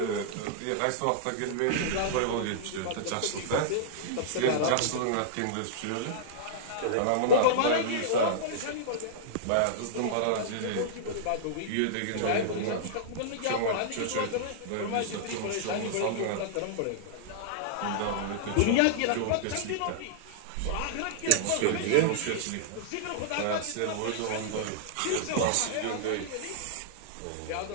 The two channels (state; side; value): different; both; correlation -0.02